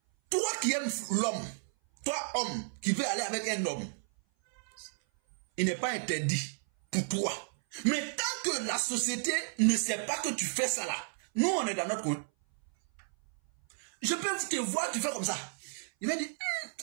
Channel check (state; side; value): silent; left; 56 dB below the other